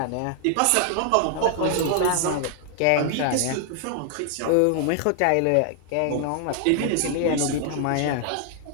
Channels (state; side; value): different; both; correlation 0.00